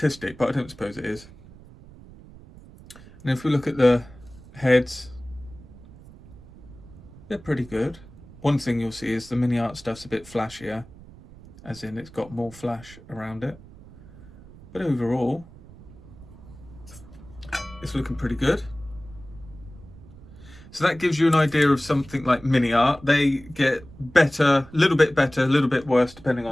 but I don't suppose it is. And if we look at the heads, they're pretty good. One thing you'll see is the mini art stuff's a bit flashier, as in it's got more flash around it. But overall, it's looking pretty good. So that gives you an idea of something like mini art. They get better, a little bit better, a little bit worse depending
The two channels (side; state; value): right; noise; rumble, 20 dB below the sound